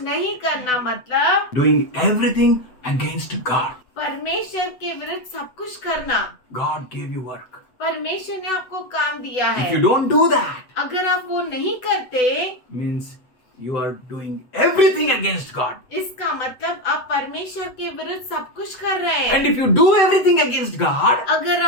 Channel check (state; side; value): late; right; 8.0 ms